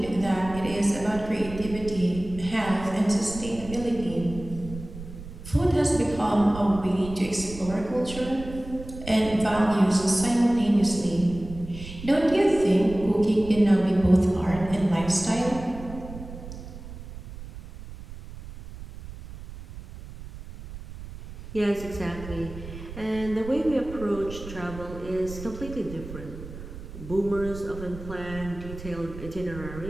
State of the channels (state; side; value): noise; right; rumble, 13 dB below the sound